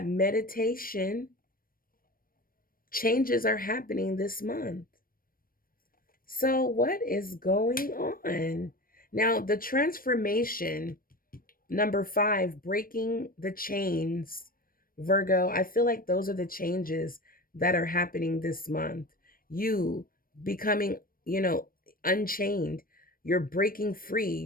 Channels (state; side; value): late; right; 0.41 ms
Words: meditation. Changes are happening this month. So what is going on? Now, the transformation, number 5, breaking the chains. Virgo, I feel like those are the changes that are happening this month. You becoming, unchained. You're breaking free.